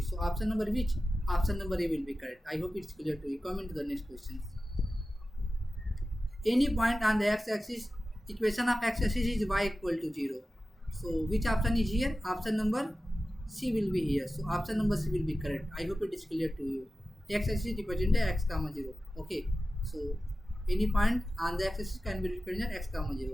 So option number which? Option number A will be correct. I hope it's clear to you. Come into the next question. Any point on the x-axis, equation of x-axis is y equal to 0. So which option is here? Option number C will be here. So option number C will be correct. I hope it is clear to you. X-axis represented x comma 0. Okay. So any point on the x-axis can be represented x comma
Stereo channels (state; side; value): normal; both; correlation 0.94